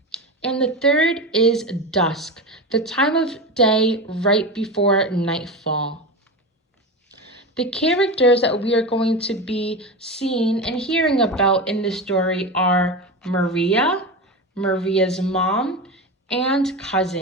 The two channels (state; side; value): normal; both; correlation 0.22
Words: And the third is dusk, the time of day right before nightfall. The characters that we are going to be seeing and hearing about in this story are Maria, Maria's mom, and